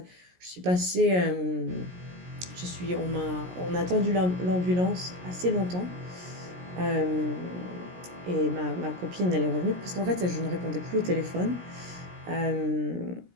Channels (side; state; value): left; late; 17 ms